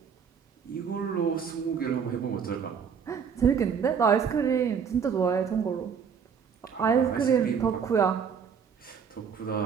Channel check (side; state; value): left; quieter; 6.9 dB